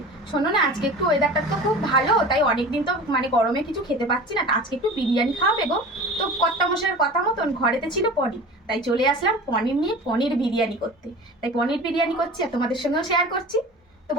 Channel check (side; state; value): both; normal; correlation 0.37